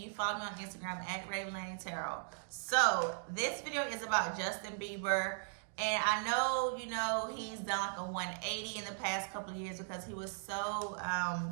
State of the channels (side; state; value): left; silent; digital silence